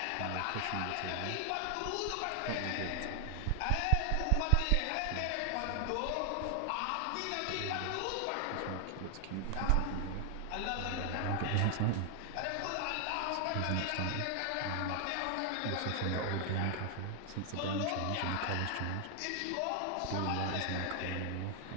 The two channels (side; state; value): both; different; correlation 0.00